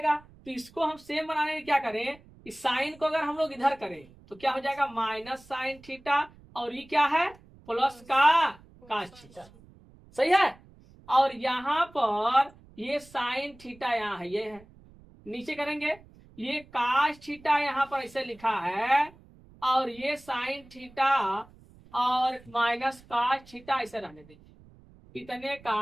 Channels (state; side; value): noise; right; rumble, 24 dB below the sound